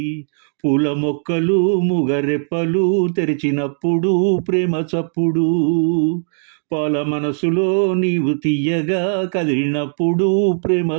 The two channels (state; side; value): silent; left; digital silence